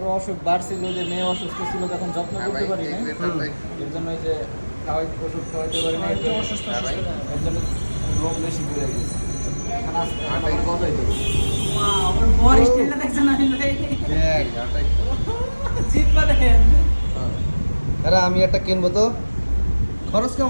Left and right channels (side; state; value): both; inverted; correlation -1.00